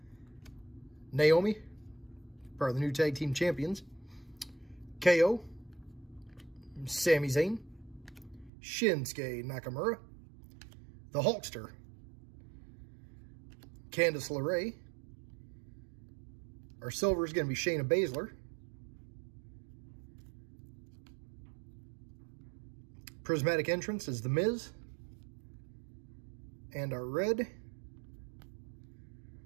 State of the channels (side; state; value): left; drops out; at 8.5 s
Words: Naomi, part of the new tag team champions. KO. Sami Zayn. Shinsuke Nakamura. The Hulkster. Candice LeRae. Our silver is going to be Shayna Baszler. Prismatic entrance is The Miz. And our red